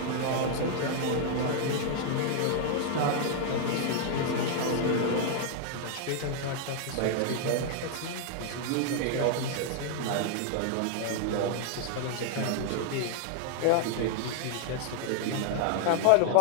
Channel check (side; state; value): both; different; correlation 0.00